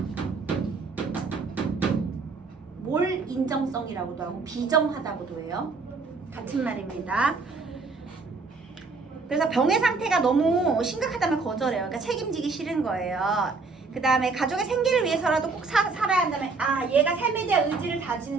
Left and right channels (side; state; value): left; quieter; 4.2 dB